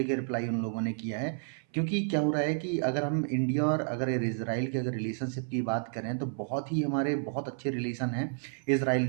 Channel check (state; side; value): silent; left; 57 dB below the other